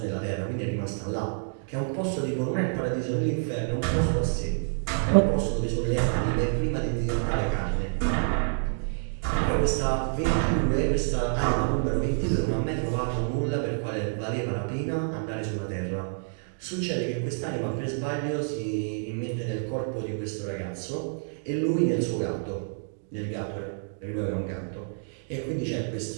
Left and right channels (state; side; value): silent; left; digital silence